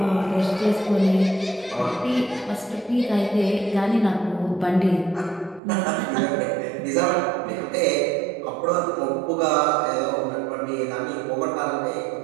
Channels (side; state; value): left; drops out; at 5.6 s